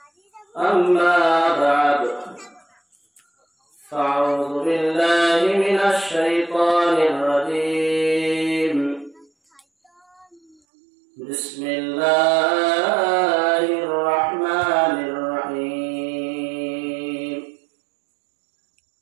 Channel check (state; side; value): drops out; left; at 10.6 s